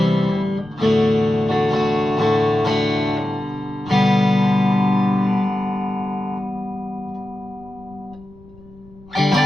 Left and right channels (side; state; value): left; noise; rumble, 24 dB below the sound